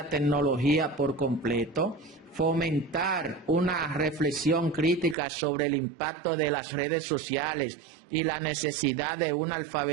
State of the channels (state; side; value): drops out; left; at 5.2 s